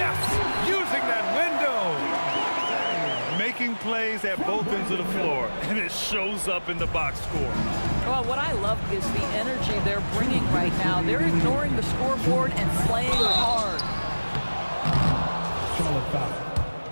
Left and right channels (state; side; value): inverted; both; correlation -1.00